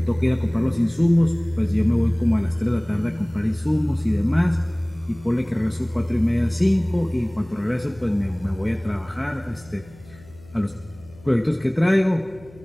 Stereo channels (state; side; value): noise; left; hum, 23 dB below the sound